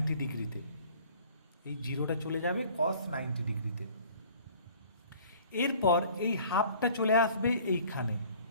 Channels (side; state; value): both; inverted; correlation -0.51